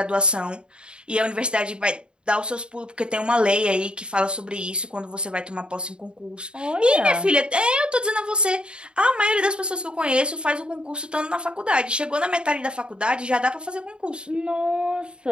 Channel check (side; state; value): left; late; 0.052 ms